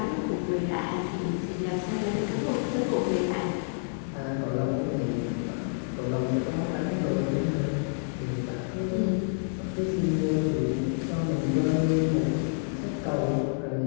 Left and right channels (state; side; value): silent; right; digital silence